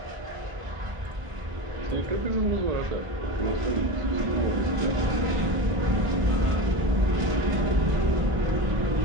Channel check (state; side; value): late; left; 1.4 ms